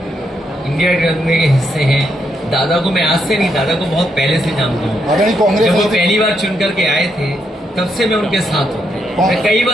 इंडिया गठबंधन के हिस्से हैं। दादा को मैं आज से नहीं, दादा को बहुत पहले से जानता हूँ। कांग्रेस जब वो पहली बार चुन करके आए थे तब से मैं उनके साथ हूँ। मैं कई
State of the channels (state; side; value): normal; both; correlation 0.78